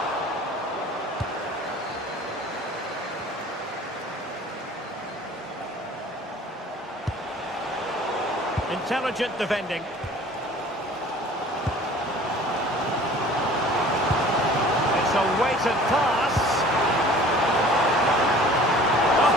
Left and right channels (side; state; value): both; normal; correlation 0.48